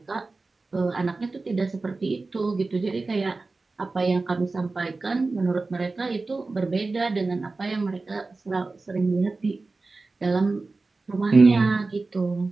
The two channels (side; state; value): left; quieter; 3.6 dB